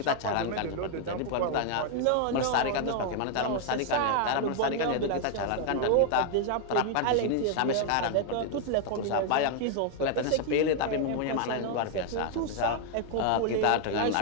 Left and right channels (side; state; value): both; different; correlation 0.00